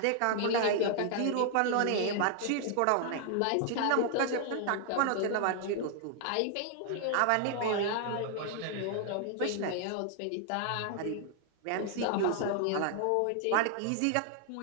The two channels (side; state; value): both; different; correlation 0.00